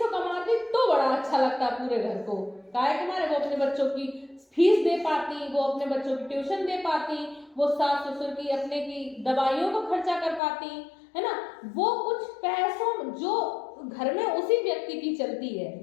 कमाती तो बड़ा अच्छा लगता पूरे घर को। काहे के मारे वो अपने बच्चों की फीस दे पाती, वो अपने बच्चों की ट्यूशन दे पाती, वो सास ससुर की अपने की दवाइयों को खर्चा कर पाती, है ना। वो कुछ पैसों जो घर में उसी व्यक्ति की चलती है।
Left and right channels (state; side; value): drops out; right; at 10.4 s